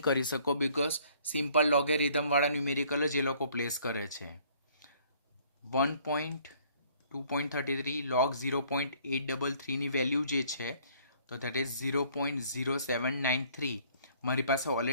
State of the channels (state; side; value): inverted; both; correlation -0.59